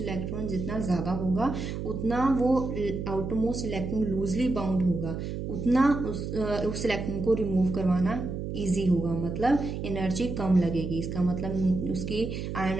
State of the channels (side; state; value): right; noise; hum, 5 dB below the sound